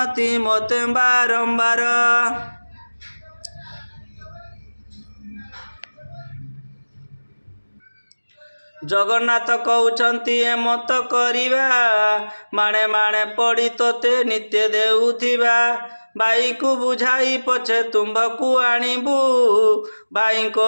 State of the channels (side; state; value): both; inverted; correlation -1.00